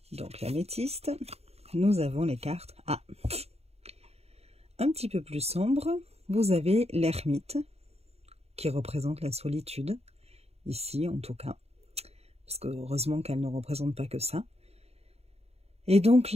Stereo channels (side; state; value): left; late; 0.30 ms